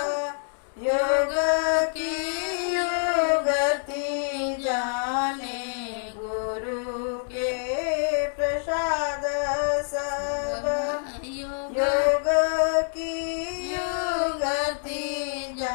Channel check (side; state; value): right; silent; 61 dB below the other